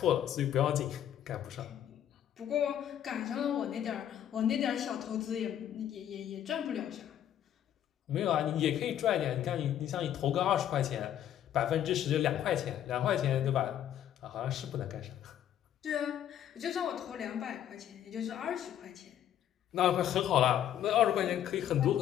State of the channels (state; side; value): quieter; right; 10.7 dB